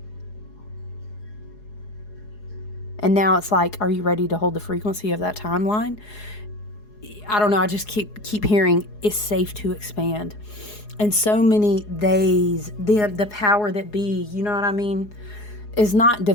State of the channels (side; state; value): right; late; 4.8 ms